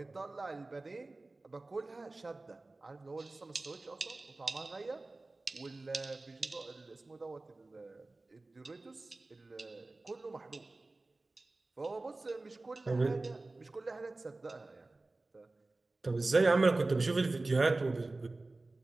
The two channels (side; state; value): left; quieter; 3.1 dB